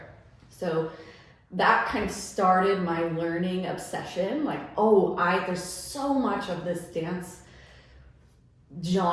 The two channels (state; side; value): identical; both; correlation 1.00